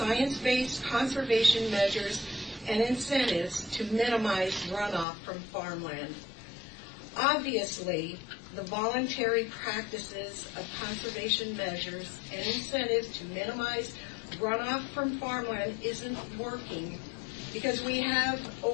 conservation measures and incentives to minimize runoff from farmland. Obviously, the voluntary practices of conservation measures and incentives to minimize runoff from farmland isn't working because we have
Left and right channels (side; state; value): right; drops out; at 5.1 s